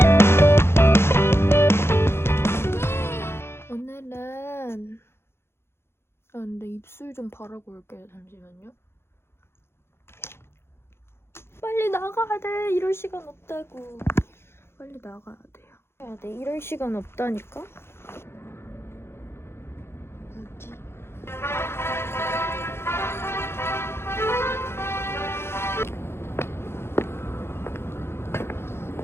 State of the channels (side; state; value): right; late; 0.12 ms